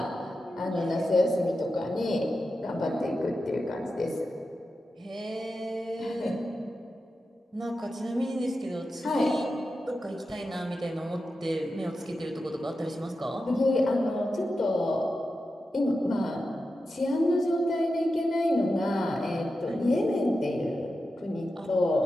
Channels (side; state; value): both; normal; correlation 0.90